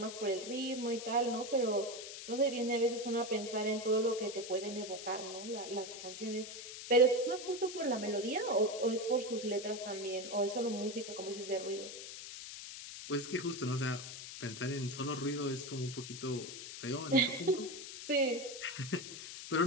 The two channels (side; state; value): left; noise; hiss, 10 dB below the sound